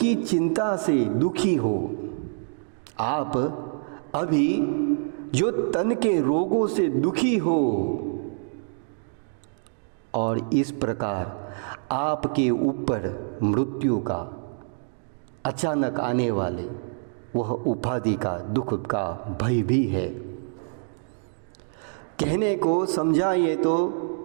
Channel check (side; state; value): left; silent; digital silence